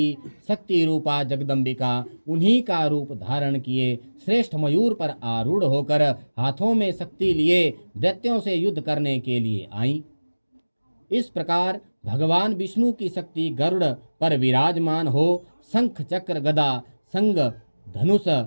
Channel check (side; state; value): both; inverted; correlation -1.00